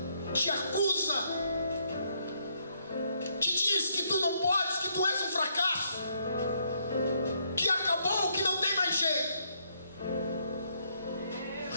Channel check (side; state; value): both; inverted; correlation -0.73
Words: te acusa, te diz que tu não podes, que tu és um fracasso, que acabou, que não tem mais jeito.